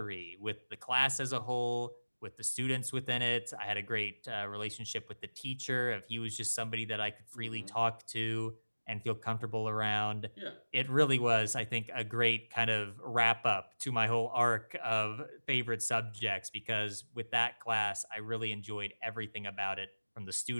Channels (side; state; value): both; inverted; correlation -1.00